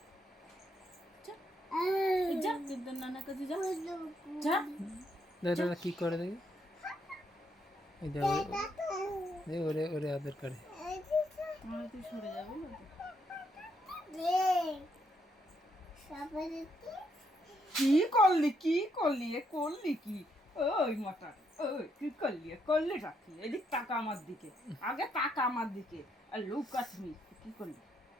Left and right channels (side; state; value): both; normal; correlation 0.75